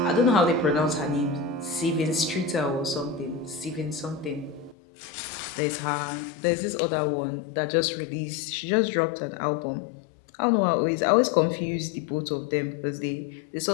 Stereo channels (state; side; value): drops out; right; at 4.8 s